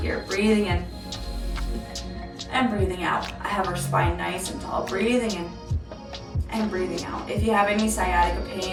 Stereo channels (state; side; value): identical; both; correlation 1.00